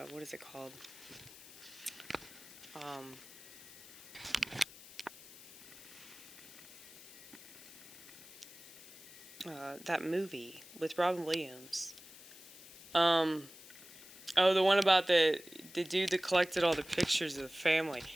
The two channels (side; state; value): left; noise; hiss, 17 dB below the sound